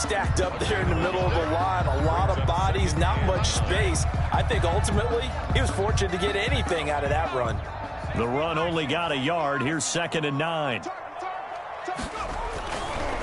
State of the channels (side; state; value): both; identical; correlation 1.00